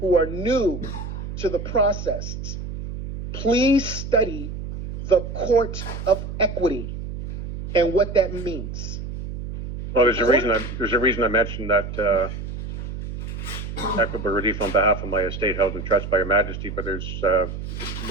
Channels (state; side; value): noise; right; hum, 7 dB below the sound